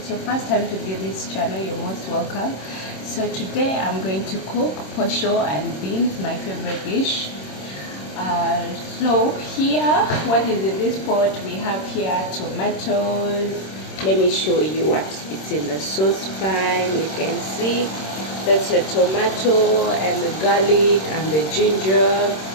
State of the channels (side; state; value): right; late; 26 ms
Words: your first time to view this channel, you're most welcome. So today I'm going to cook posho and beans, my favorite dish. So here, what is in this pot? We have here tomatoes. Let me show you what it's in the saucepan. You can see that's a tomato and the garlic and the ginger.